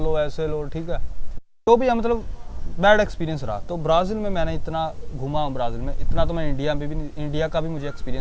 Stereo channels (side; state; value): both; identical; correlation 1.00